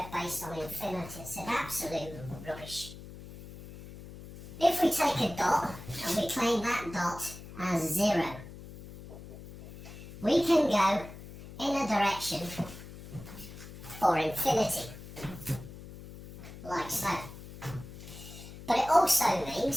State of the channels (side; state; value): left; noise; hum, 14 dB below the sound